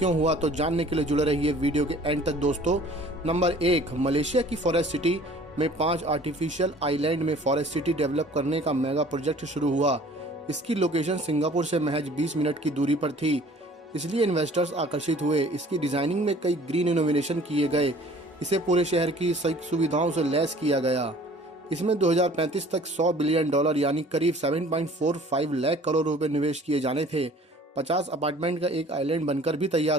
हुआ, तो जानने के लिए जुड़े रहिए वीडियो के एंड तक दोस्तों। नंबर 1, मलेशिया की फॉरेस्ट सिटी में 5 आर्टिफिशियल आइलैंड में फॉरेस्ट सिटी डेवलप करने का मेगा प्रोजेक्ट शुरू हुआ। इसकी लोकेशन सिंगापुर से महज 20 मिनट की दूरी पर थी, इसलिए इन्वेस्टर्स आकर्षित हुए। इसकी डिजाइनिंग में कई ग्रीन इनोवेशन किए गए। इसे पूरे शहर की सुविधाओं से लैस किया गया। इसमें 2035 तक $100 बिलियन यानी करीब 7.45 लाख करोड़ रुपए निवेश किए जाने थे। 50 अपार्टमेंट का एक आइलैंड बनकर भी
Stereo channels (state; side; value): normal; both; correlation 0.51